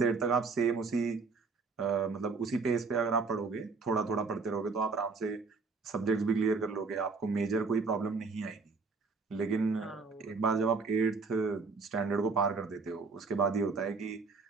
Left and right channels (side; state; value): left; quieter; 4.5 dB